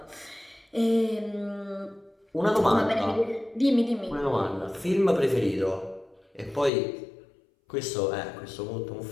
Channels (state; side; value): drops out; right; at 6.7 s